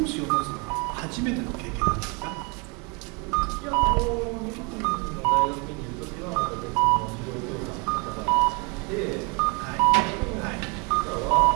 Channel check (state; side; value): quieter; left; 31.1 dB